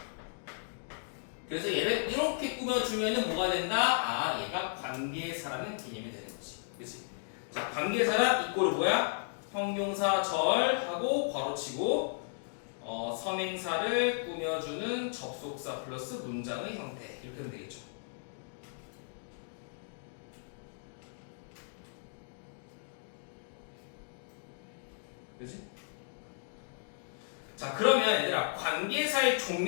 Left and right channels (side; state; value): right; silent; digital silence